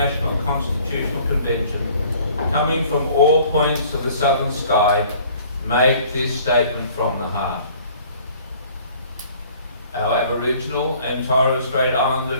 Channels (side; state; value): both; inverted; correlation -0.54